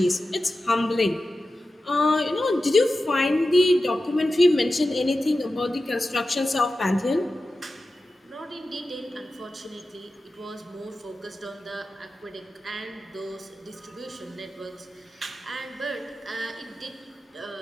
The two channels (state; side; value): normal; both; correlation 0.93